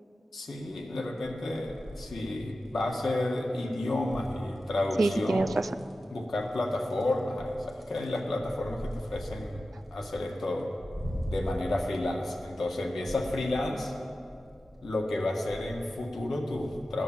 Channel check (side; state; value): both; normal; correlation 0.93